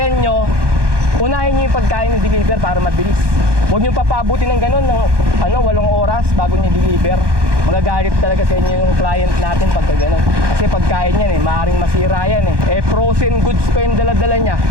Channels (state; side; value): late; left; 1.2 ms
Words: nyo, unahin nyo yung pagkain yung deliver para mabilis. Huwag nyo papabuti ng ganun ng 8 oras bago nyo deliver. Magagalit talaga sa inyo yung client natin pagka ganun. Kasi pagkain yan eh, maaaring masira yan eh. Frozen goods pa yung dala-dala niya.